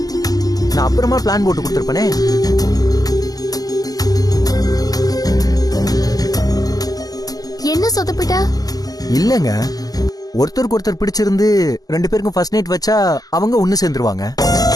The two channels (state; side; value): late; right; 0.18 ms